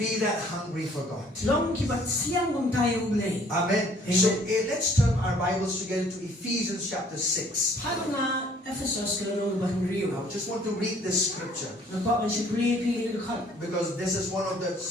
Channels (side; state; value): both; normal; correlation 0.58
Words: that hungry for God. Amen. So let's turn our Bibles together to Ephesians chapter 6. I just want to read this scripture. Because this is one of the